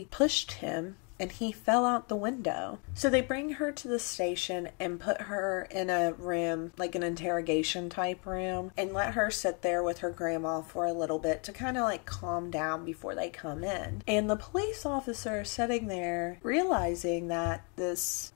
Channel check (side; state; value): right; quieter; 35.5 dB